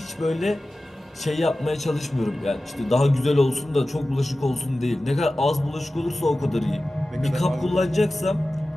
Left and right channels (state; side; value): normal; both; correlation 0.95